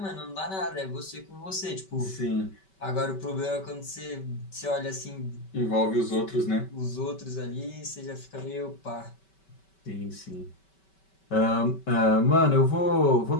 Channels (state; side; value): late; right; 5.2 ms